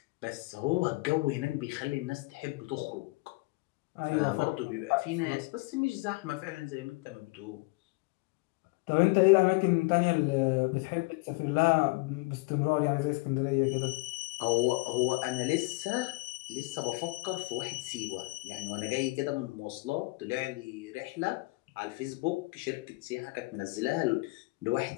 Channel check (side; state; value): right; quieter; 25.0 dB